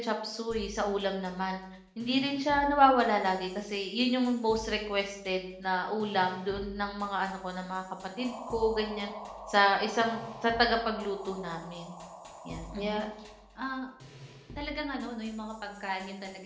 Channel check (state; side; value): identical; both; correlation 1.00